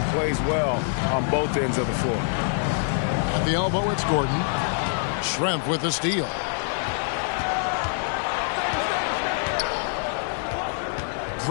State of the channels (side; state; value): right; silent; 55 dB below the other